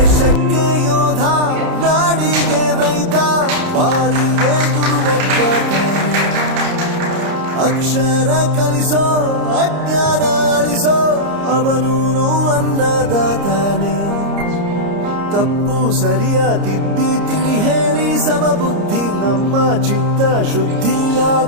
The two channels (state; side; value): late; left; 30 ms